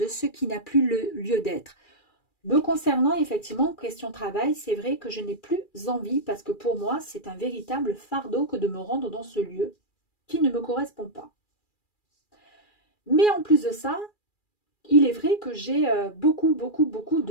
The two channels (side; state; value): right; late; 2.4 ms